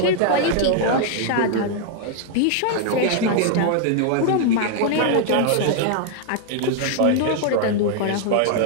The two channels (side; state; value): both; different; correlation 0.00